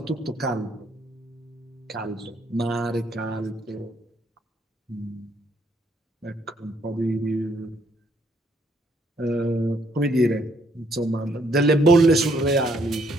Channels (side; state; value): both; normal; correlation 0.69